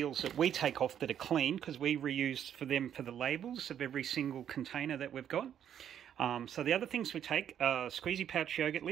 that we take off that are clean, because we reuse for them for the labels of every single container that we've got. So the other things we take are Squeezy Pouch yogurt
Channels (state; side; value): quieter; left; 9.6 dB